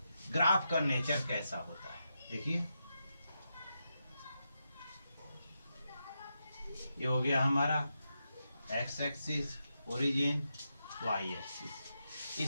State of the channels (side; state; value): both; inverted; correlation -0.86